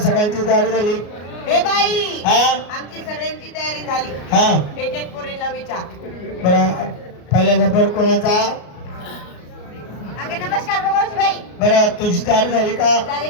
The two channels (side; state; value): right; late; 33 ms